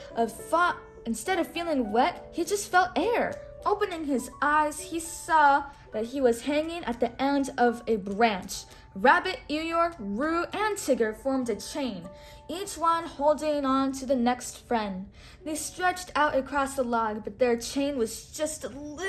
of feeling wet, he just felt air. Opening his eyes, he saw that he was hanging at the end of a branch. Rabbit, Eeyore, Roo, and Tigger formed a chain, each one holding on to the next friend. They stretched out across the log, but their chain was just a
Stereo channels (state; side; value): identical; both; correlation 1.00